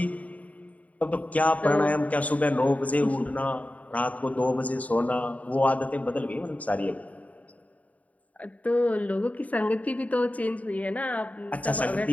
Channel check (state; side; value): late; right; 0.070 ms